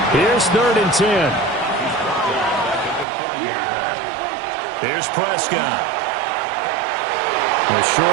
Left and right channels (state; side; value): drops out; left; at 3.1 s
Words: Here's 3rd and 10. Here's Prescott. The short